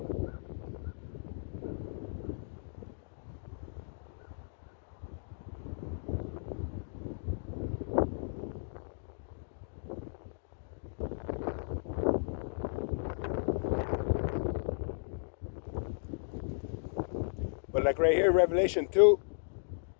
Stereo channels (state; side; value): silent; right; digital silence